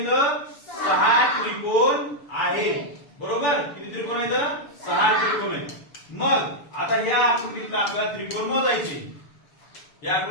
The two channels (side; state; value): right; late; 6.8 ms